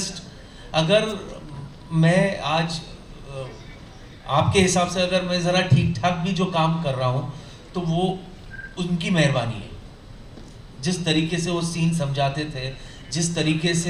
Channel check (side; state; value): both; identical; correlation 1.00